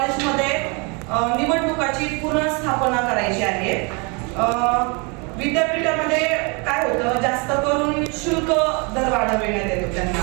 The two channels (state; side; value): quieter; left; 31.8 dB